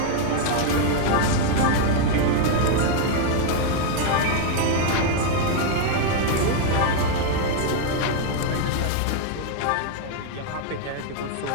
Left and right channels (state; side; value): different; both; correlation 0.00